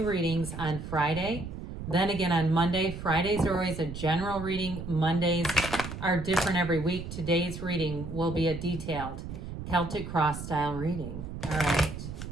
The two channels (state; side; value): noise; right; rumble, 9 dB below the sound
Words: readings on Friday, then again on Monday. Fridays are always a general reading. Mondays are different every week. Today's reading will be a detailed Celtic cross style reading. All right.